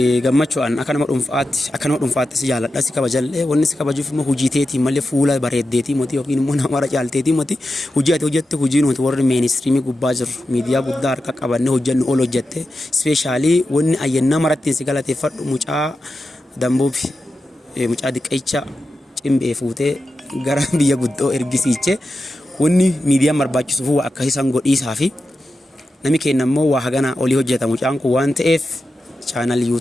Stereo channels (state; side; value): normal; both; correlation 0.90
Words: gammachuudhaan akka nama dhuunfaatti si jaalladha si kabajallee wanni si kabajuuf immoo hojii teetii malee fuula bareeddeetii moti yookiin immoo nama caalteetii moti hojii ati hojjette hojii nuti warri meenistriimii gubbaa jiru miidiyaa guddaa harka qabannee hojjennu ol hojjette ispeeshaalii wanni ayyannaa maratti si galateeffadhu mucaa dambuufi mucaa diqeecha cimbee fuutee gara biyya guddoo ergisiiche wanni miidiyaan barbaachisuuf akka isaan godhiisaa fi nami keenya immoo waa hagana olii hojjeta mucaan kun waan ta'eef chaanal